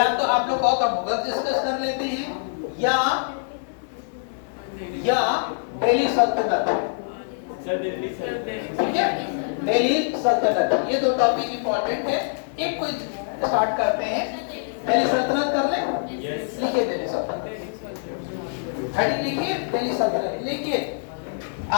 तो आप लोग कहो तो मुगल डिस्कस कर लेते हैं, या दिल्ली सल्तनत, ठीक है, दिल्ली सल्तनत। ये 2 टॉपिक इंपॉर्टेंट है। एक कोई स्टार्ट करते हैं, दिल्ली सल्तनत कर ले। लिखिए दिल्ली सल्तनत, हेडिंग लिखिए दिल्ली सल्तनत। लिखिए,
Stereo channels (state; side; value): silent; right; 62 dB below the other